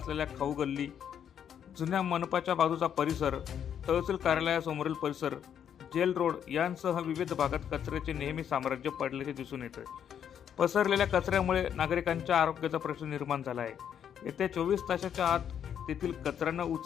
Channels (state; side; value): quieter; right; 8.8 dB